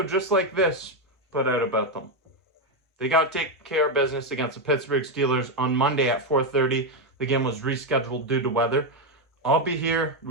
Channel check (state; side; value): normal; both; correlation 0.06